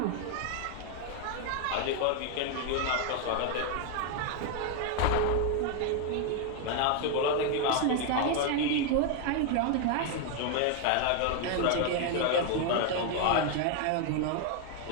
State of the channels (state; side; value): different; both; correlation 0.01